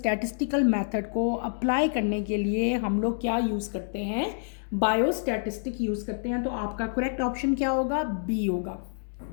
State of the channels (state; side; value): silent; right; digital silence